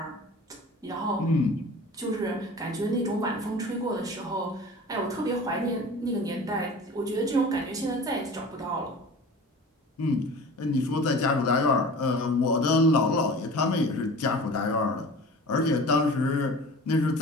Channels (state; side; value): normal; both; correlation 0.39